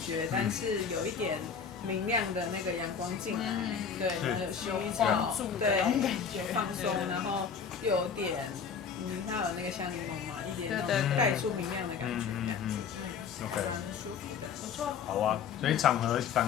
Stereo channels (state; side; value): quieter; right; 6.6 dB